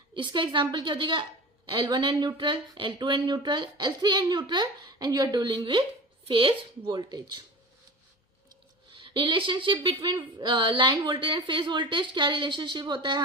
इसका एग्जाम्पल क्या हो जाएगा? L1 and neutral, L2 and neutral, L3 and neutral, and you are dealing with phase voltage. Relationship between line voltage and phase voltage, क्या रिलेशनशिप होता है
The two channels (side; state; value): both; normal; correlation 0.34